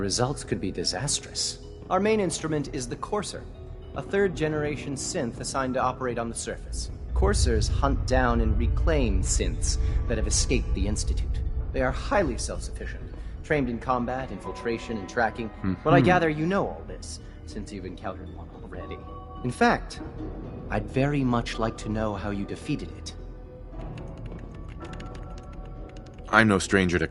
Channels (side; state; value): both; identical; correlation 1.00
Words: could be disastrous. Our main instrument is the Courser, a third-generation synth assigned to operate on the surface. Coursers hunt down and reclaim synths that have escaped the Institute. They are highly self-sufficient, trained in combat, infiltration, and tracking. But I gather you know all this, since you've encountered one already. In fact, I'd very much like to know how you defeated it. I'm no stranger to